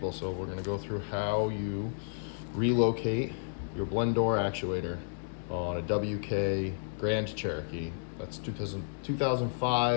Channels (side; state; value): right; silent; digital silence